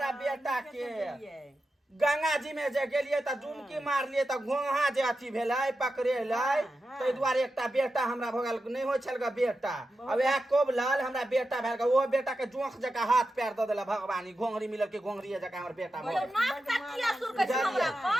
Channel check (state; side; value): normal; both; correlation 0.90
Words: बेटा के गंगा जी में जे गेलिए त डुमकी मारलिए त घोंघा जे अथि भेलै पकड़ेलै तै दुआरे एकटा बेटा हमरा भगल नहीं होय छल ग बेटा अब यह कोबलल हमरा बेटा भेल ग ओ बेटा के जोंख जका हाथ पैर द देला भगवानी घोंघरी मिलल के घोंघरी जका हमर बेटा भगल नाक तकिया सुर के हमरा